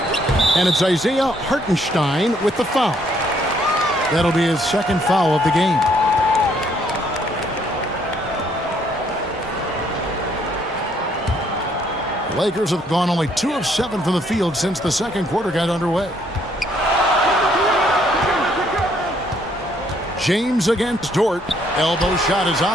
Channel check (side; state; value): both; normal; correlation 0.68